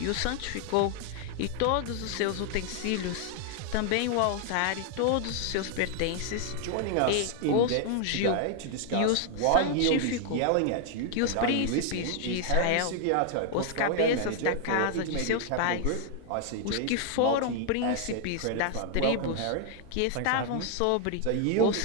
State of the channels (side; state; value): both; different; correlation 0.00